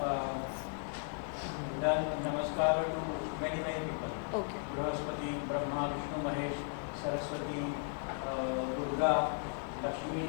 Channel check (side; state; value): right; silent; 54 dB below the other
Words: done namaskar to many people. Okay. Brahaspati, Brahma, Vishnu, Mahesh, Saraswati, Durga, Lakshmi,